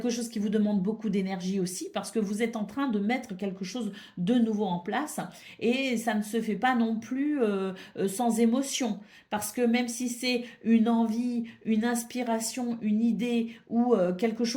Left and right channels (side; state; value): both; identical; correlation 1.00